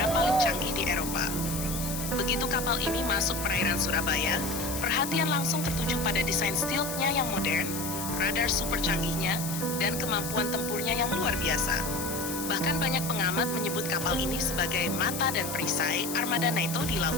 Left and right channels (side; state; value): left; noise; hiss, 6 dB below the sound